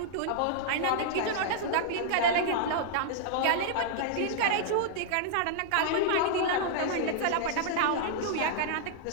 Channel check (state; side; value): different; both; correlation -0.01